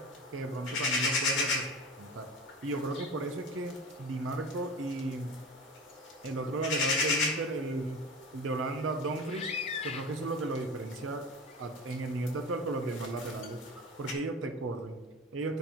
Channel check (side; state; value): both; normal; correlation 0.30